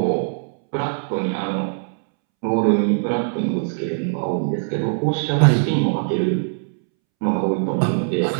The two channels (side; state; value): left; silent; 65 dB below the other